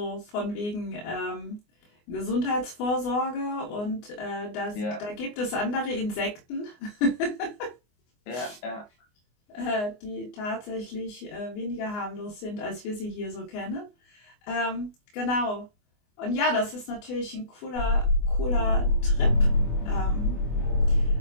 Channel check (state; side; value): late; right; 24 ms